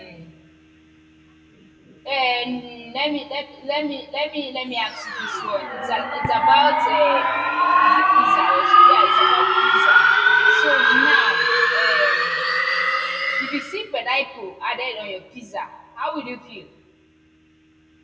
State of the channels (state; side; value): identical; both; correlation 1.00